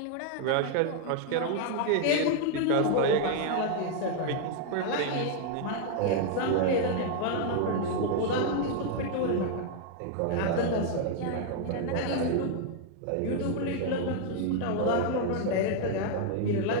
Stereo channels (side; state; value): both; different; correlation 0.00